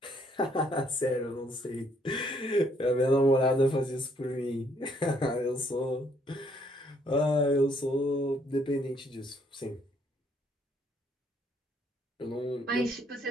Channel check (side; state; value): both; normal; correlation 0.68